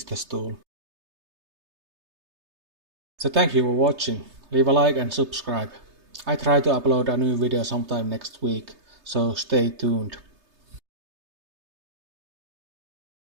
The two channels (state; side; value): late; left; 3.3 ms